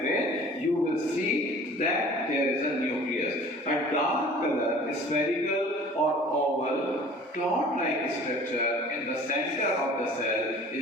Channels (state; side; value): normal; both; correlation 0.47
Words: you will see that there is a nucleus. A dark color, spherical or oval, cloud-like structure in the center of the cell